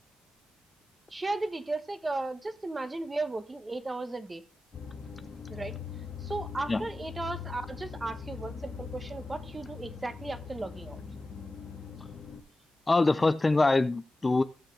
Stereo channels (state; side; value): normal; both; correlation 0.94